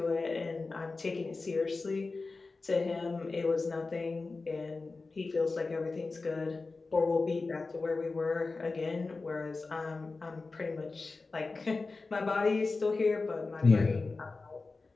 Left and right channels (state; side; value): quieter; right; 3.8 dB